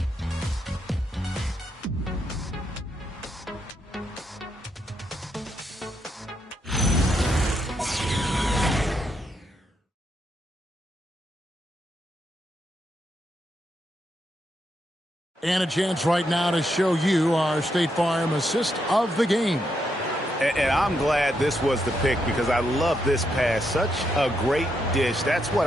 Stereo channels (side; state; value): both; normal; correlation 0.80